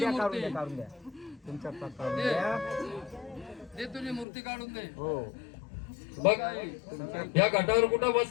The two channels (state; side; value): drops out; right; at 4.2 s